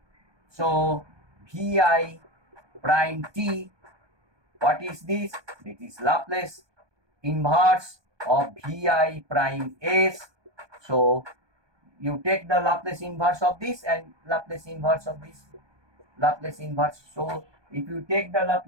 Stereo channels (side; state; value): left; late; 1.2 ms